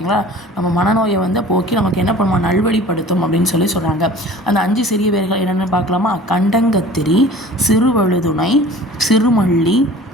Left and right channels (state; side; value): normal; both; correlation 0.45